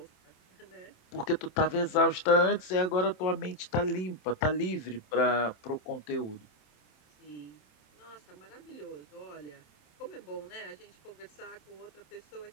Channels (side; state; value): right; late; 27 ms